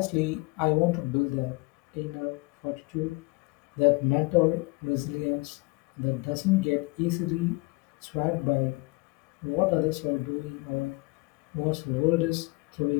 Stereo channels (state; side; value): quieter; right; 26.3 dB